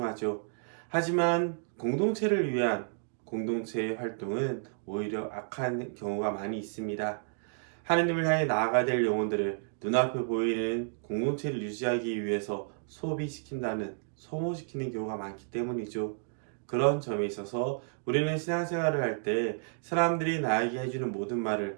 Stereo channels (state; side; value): silent; left; digital silence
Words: 하지만 공동체를 위한 공동체의 활동은 오히려 악한 경우가 많이 있습니다. 하느님을 향해 나아가야 될 영혼들을 눈앞에 보이는 공동체를 유지하기 위해서 소모시키는 경우가 많기 때문이죠. 그런 점에 있어서 우리는 신앙생활을 할 때 사람들이 나에게 해주는 모든